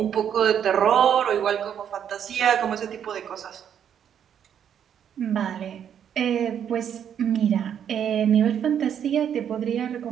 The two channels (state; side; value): quieter; left; 8.9 dB